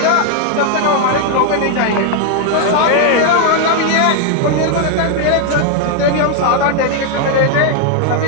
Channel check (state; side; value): different; both; correlation 0.00